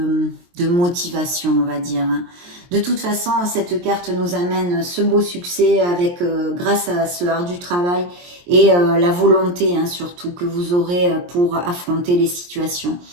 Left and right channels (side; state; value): left; late; 23 ms